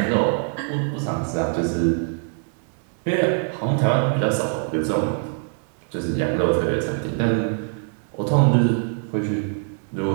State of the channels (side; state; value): left; silent; 57 dB below the other